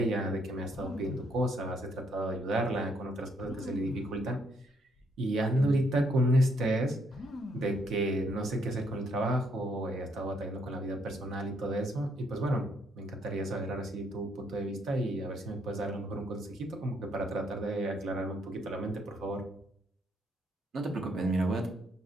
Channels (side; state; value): both; normal; correlation 0.71